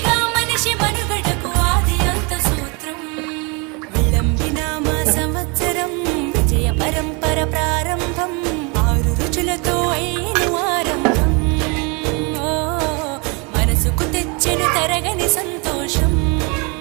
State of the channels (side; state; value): left; quieter; 30.8 dB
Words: సంవత్సరం విజయ పరంపర ప్రారంభం 6 రుచులతో అయిన ఆరంభం. మనసుకు తెచ్చెను తరగని సంతోషం.